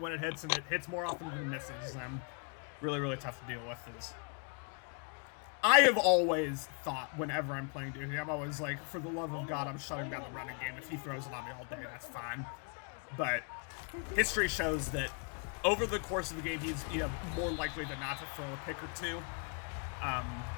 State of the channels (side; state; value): right; quieter; 38.8 dB